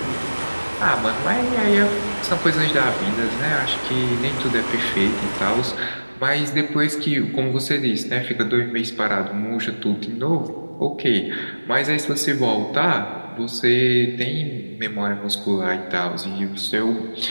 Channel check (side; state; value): both; inverted; correlation -1.00